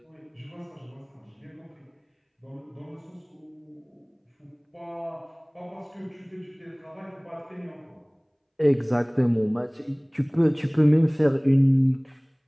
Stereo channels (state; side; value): identical; both; correlation 1.00